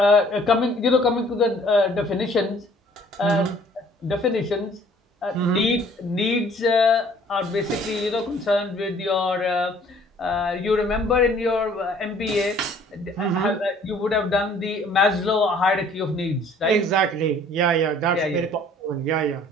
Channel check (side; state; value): both; normal; correlation 0.56